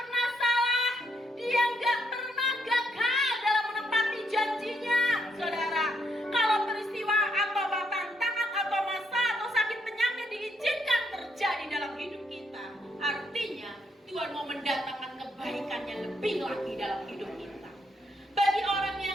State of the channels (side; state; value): both; normal; correlation 0.75